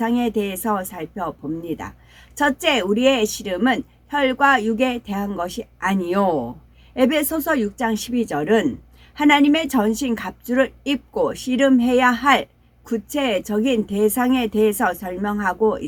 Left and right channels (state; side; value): identical; both; correlation 1.00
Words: 대해서 살펴봅니다. 첫째, 우리의 씨름은 혈과 육에 대한 것이 아니요. 에베소서 6장 12절은 하나님의 전신 갑주를 입고 씨름해야 할 구체적인 대상에 대해서 설명하고